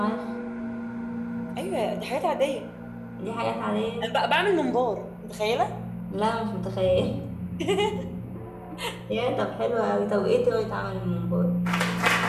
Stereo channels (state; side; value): identical; both; correlation 1.00